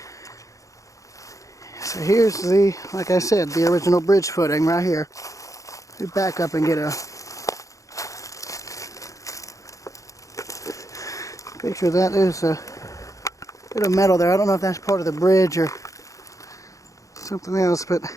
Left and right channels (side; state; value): right; late; 0.16 ms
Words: So here's the, like I said, the original bridge footing right here. We back up and get a picture of that. There's a bit of metal there. I don't know if that's part of the bridge or something else, but